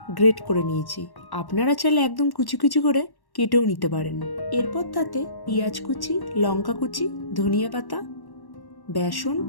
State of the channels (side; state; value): right; late; 1.1 ms